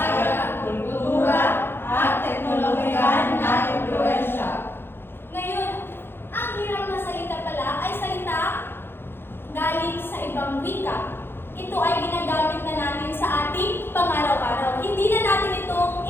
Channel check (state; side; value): late; right; 0.10 ms